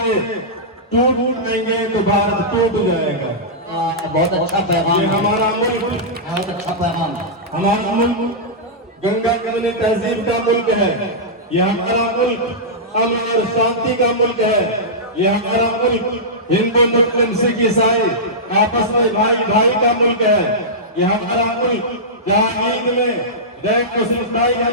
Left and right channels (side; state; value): both; normal; correlation -0.14